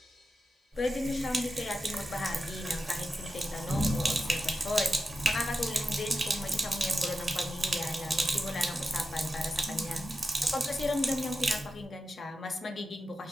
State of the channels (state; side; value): normal; both; correlation 0.90